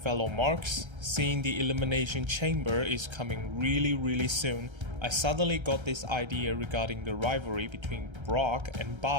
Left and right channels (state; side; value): late; left; 1.3 ms